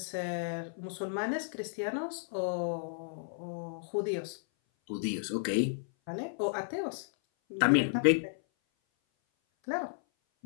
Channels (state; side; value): silent; right; 56 dB below the other